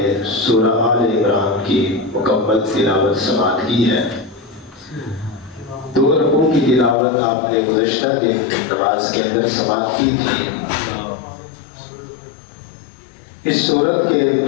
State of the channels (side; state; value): right; drops out; at 7.0 s